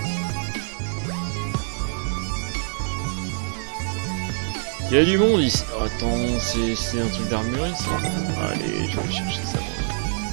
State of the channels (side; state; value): left; silent; 62 dB below the other